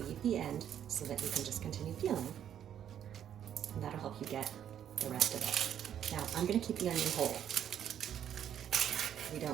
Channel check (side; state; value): left; quieter; 9.8 dB